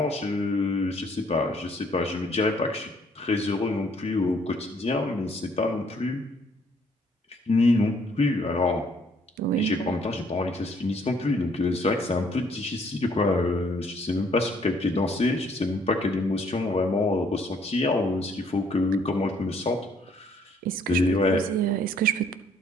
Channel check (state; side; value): normal; both; correlation 0.65